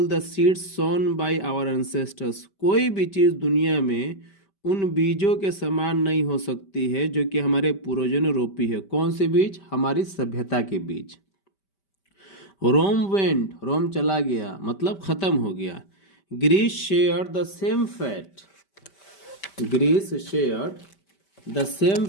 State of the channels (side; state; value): right; late; 5.1 ms